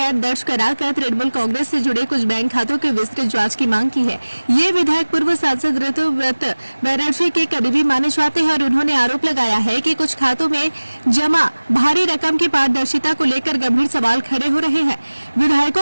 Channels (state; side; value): inverted; both; correlation -1.00